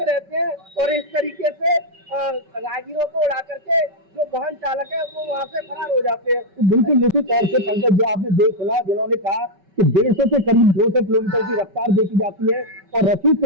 रहते हैं और इस तरीके से राहगीरों को उड़ा करके जो वाहन चालक है वो वहाँ से फरार हो जाते हैं। तो बिल्कुल निश्चित तौर से पंकज, जो आपने देख सुना, जिन्होंने कहा कि 150 से करीब 200 किलोमीटर की रफ्तार देखी जाती है और रसीद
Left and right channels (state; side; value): late; left; 5.2 ms